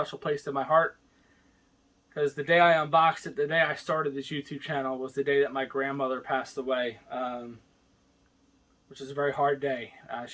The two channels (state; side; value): identical; both; correlation 1.00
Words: place in my heart. Because the day I unboxed it, the day I started this YouTube channel, was the day that my grandmother passed away. Which is a very hard day.